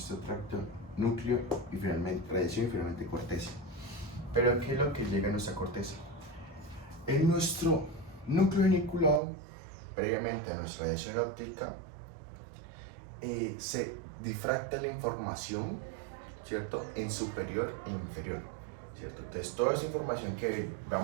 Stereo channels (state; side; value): drops out; left; at 9.2 s